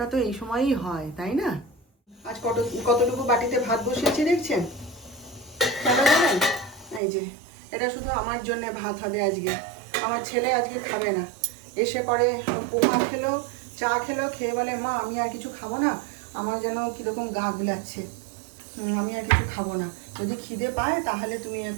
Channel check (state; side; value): drops out; left; at 7.0 s